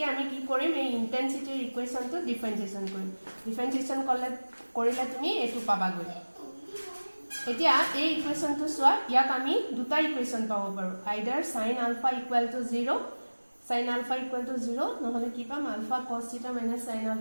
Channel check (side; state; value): both; inverted; correlation -1.00